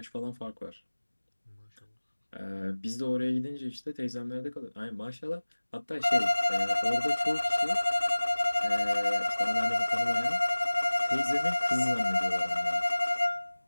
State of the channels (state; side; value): inverted; both; correlation -1.00